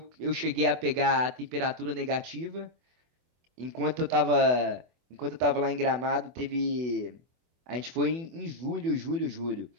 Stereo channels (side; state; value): left; late; 24 ms